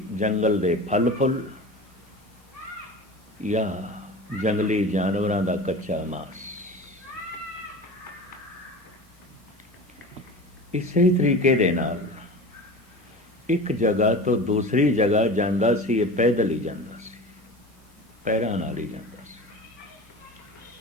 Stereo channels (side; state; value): both; normal; correlation 0.33